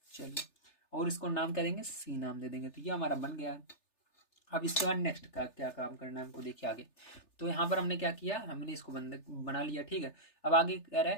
चलिए, और इसको नाम क्या देंगे, C नाम दे देंगे। तो ये हमारा बन गया। अब इसके बाद नेक्स्ट का क्या काम करना है हमको, देखिए आगे। तो यहाँ पर हमने क्या किया, हमने इसको बना लिया। ठीक है, अब आगे कह रहा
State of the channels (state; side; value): late; right; 3.3 ms